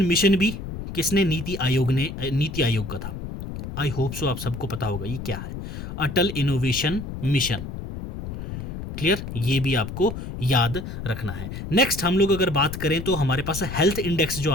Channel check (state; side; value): noise; left; rumble, 8 dB below the sound